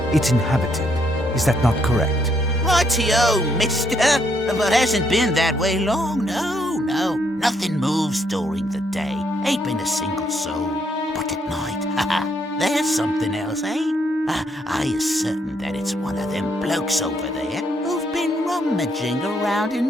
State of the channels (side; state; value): both; normal; correlation 0.73